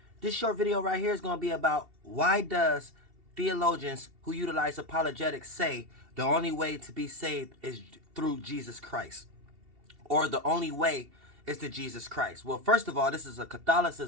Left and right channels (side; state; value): left; late; 2.7 ms